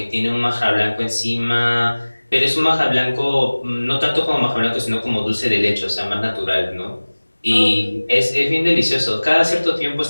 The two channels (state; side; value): inverted; both; correlation -1.00